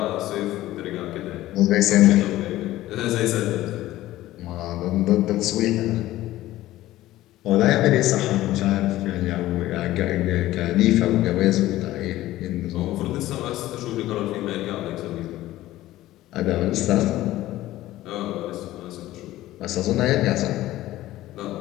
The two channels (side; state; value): right; quieter; 15.6 dB